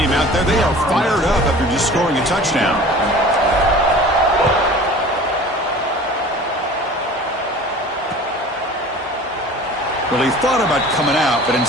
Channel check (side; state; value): both; normal; correlation 0.42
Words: out there, they are fired up after just scoring a touchdown. Well, he thought about coming out, but